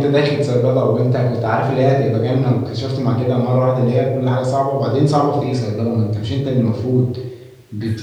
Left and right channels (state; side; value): identical; both; correlation 1.00